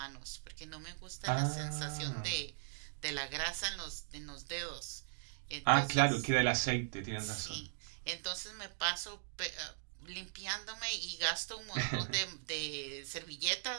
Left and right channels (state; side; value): silent; left; digital silence